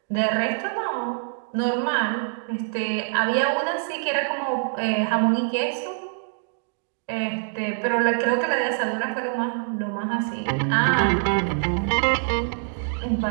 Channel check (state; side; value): silent; left; digital silence